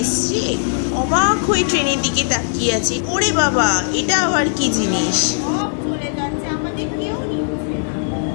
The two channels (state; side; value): silent; right; digital silence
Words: অবাক হয়ে ট্রেনের দিকে তাকিয়ে আছে। ওরে বাবা, এটা আবার কি জিনিস! সব চলে যাচ্ছে, আমাদের কেউ নিচ্ছে না।